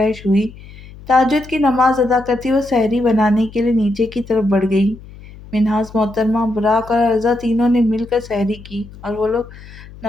ہوئی۔ تہجد کی نماز ادا کرتی وہ سحری بنانے کے لیے نیچے کی طرف بڑھ گئی۔ منہاس محترمہ، براق اور عرضا تینوں نے مل کر سحری کی اور وہ لوگ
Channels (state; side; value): noise; left; hum, 18 dB below the sound